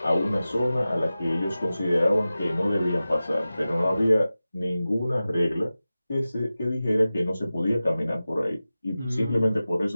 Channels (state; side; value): inverted; both; correlation -0.95